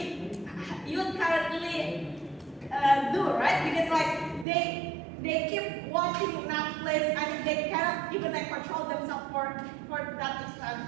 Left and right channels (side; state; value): left; drops out; at 4.5 s